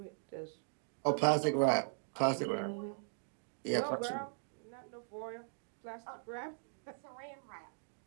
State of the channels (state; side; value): silent; left; digital silence